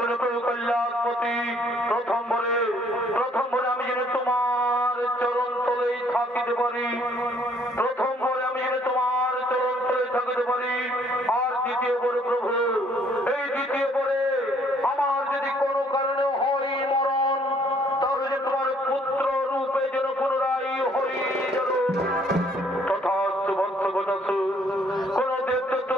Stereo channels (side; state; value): both; normal; correlation 0.63